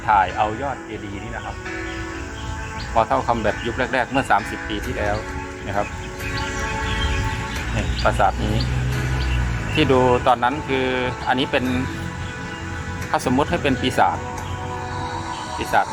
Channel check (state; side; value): identical; both; correlation 1.00